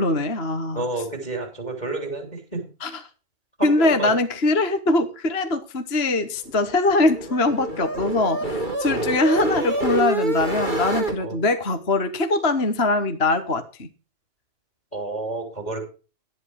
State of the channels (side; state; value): right; late; 2.9 ms